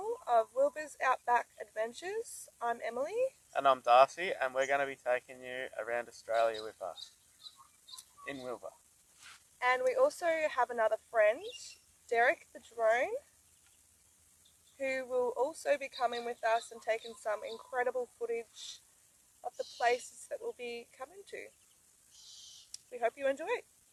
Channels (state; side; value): identical; both; correlation 1.00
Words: of Wilbur's Outback Adventures. I'm Emily. And I'm Darcy, and we're going to be taking you around Australia with us in Wilbur. And we also have another friend, Derek the drone, who will also be coming with us and taking some incredible footage of the places that we'll be coming to. We hope you enjoy.